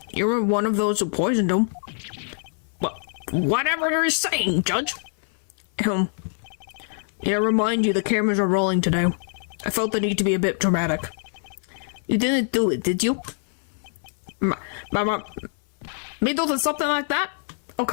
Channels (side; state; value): right; silent; 62 dB below the other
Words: you were one of those who poisoned him. Well, whatever you're saying, Judge. Yeah, remind you the cameras are rolling today. I felt the need to be a bit dramatic. You didn't do it, did you? Me do something like that? Oh,